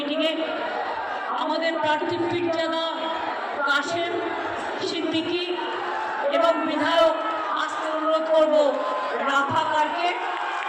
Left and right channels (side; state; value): both; identical; correlation 1.00